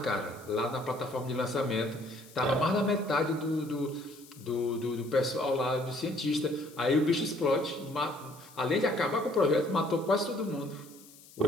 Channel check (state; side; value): noise; left; hiss, 22 dB below the sound